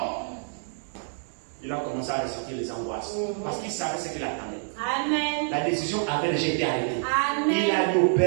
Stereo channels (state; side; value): silent; left; digital silence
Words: il a commencé à ressentir les angoisses. Parce qu'il savait ce qu'il attendait. Amen. La décision avait déjà été arrêtée. Amen. Il a dit au